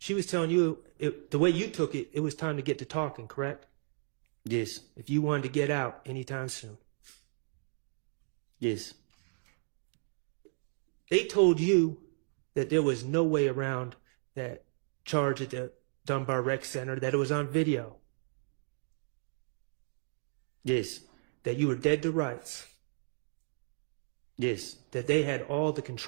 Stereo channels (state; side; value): silent; left; 55 dB below the other